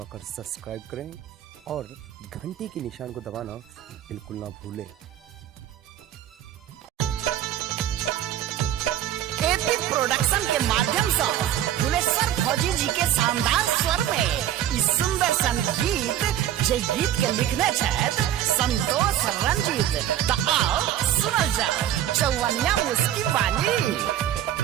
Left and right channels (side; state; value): left; quieter; 11.4 dB